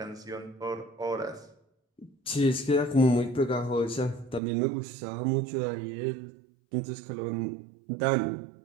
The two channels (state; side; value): drops out; left; at 4.4 s